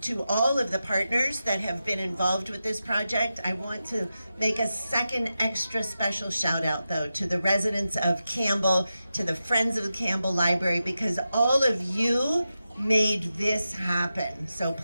to all of the partners that have been involved with this project. I want to make a second extra special shout out though to the residents of Campbell, to the Friends of the Campbell Library, because all of you made this happen. So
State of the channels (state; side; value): inverted; both; correlation -0.91